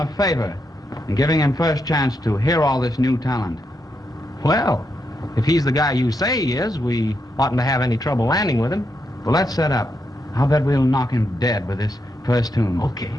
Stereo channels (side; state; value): both; normal; correlation 0.82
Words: favor and giving him first chance to hear all this new talent. Well, if he's the guy you say he is, we oughtn't to have any trouble landing with him. Well, let's set up. I'll bet we'll knock him dead with this first tune. Okay.